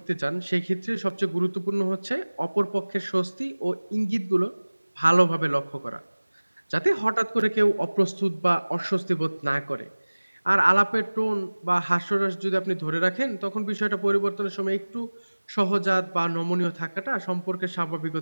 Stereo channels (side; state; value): both; inverted; correlation -1.00